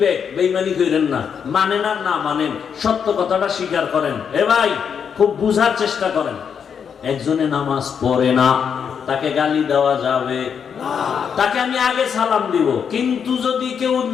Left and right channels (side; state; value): right; quieter; 7.2 dB